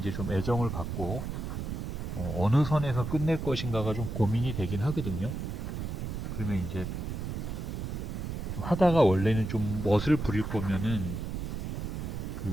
좀 애정을 갖고 어느 선에서 끝낼 것인가가 좀 고민이 되긴 하거든요. 그러면 이제 하다가 원래는 좀 멋을 부릴 거면은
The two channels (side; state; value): right; noise; rumble, 4 dB below the sound